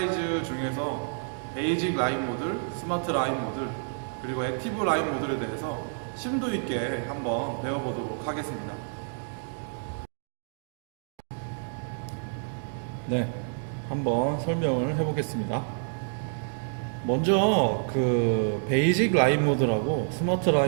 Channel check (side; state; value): left; silent; digital silence